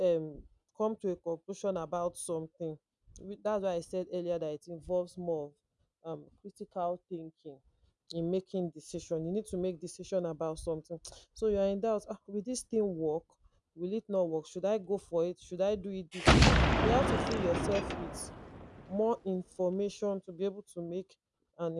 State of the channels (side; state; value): both; identical; correlation 1.00